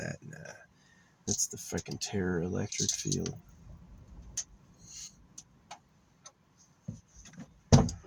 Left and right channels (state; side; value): identical; both; correlation 1.00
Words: Nah. That's the fucking Terror electric field.